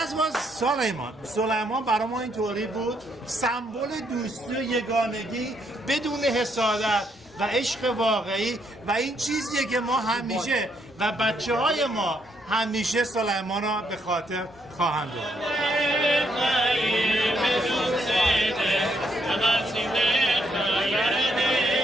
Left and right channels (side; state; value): both; normal; correlation 0.74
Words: was سلیمان برای ما اینطوری بود سمبل دوستی و یگانگی بدون حسادت و عشق واقعی و این چیزیه که ما همیشه و بچه های ما همیشه سلیمان را به خاطر خواهند داشت.